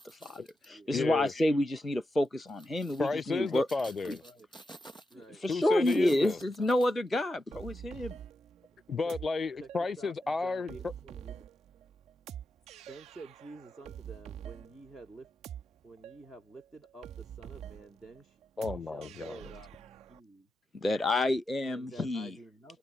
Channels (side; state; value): both; normal; correlation 0.88